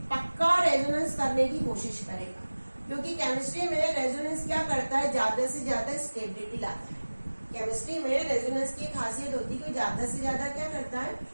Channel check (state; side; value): inverted; both; correlation -1.00